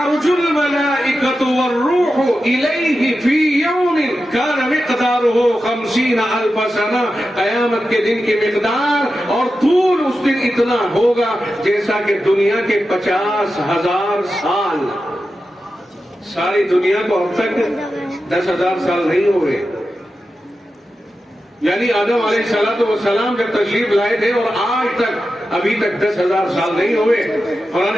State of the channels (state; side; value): normal; both; correlation 0.91